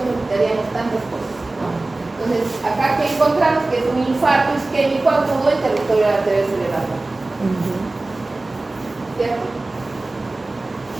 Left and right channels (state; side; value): quieter; left; 3.0 dB